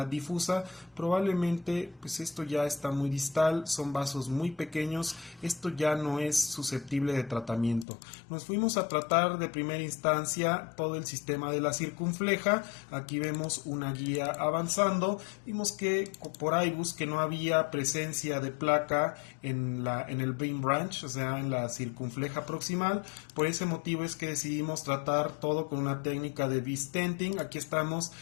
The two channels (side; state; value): right; drops out; at 7.9 s